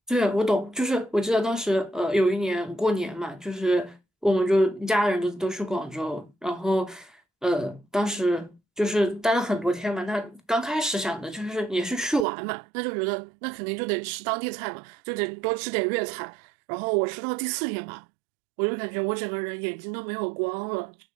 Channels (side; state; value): left; drops out; at 12.2 s